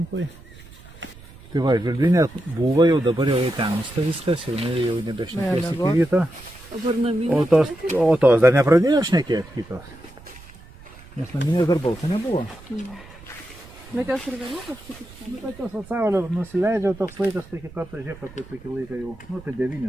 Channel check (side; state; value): right; noise; rumble, 20 dB below the sound